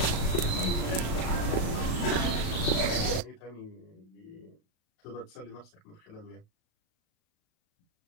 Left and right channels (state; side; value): late; right; 37 ms